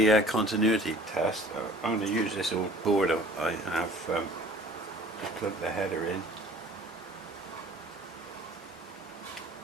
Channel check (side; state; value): both; normal; correlation 0.49